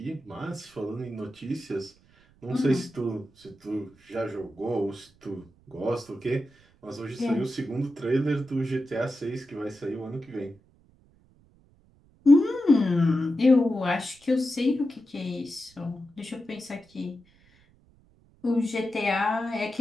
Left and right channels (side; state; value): right; noise; rumble, 30 dB below the sound